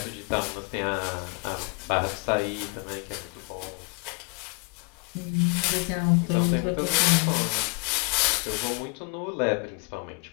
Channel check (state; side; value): quieter; right; 33.4 dB